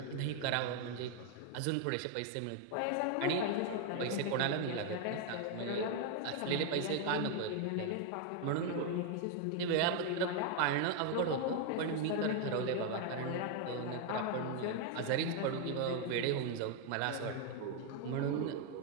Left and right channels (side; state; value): both; different; correlation 0.01